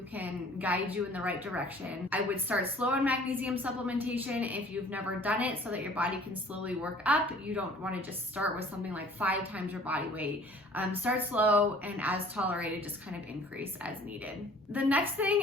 can guide you in the right direction. I would start slow on magnesium supplementation if you've never done it, so that your body can slowly work up. You don't want to just start with something like 5 times your body weight. Start slow, and as tolerated, just kind of increase as needed. The next thing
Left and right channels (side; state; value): both; normal; correlation 0.52